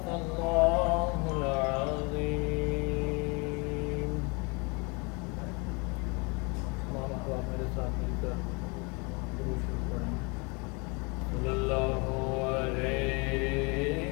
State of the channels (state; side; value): quieter; right; 30.5 dB